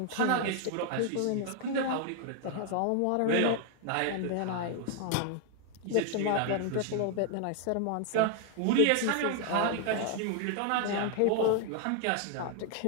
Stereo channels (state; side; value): different; both; correlation 0.00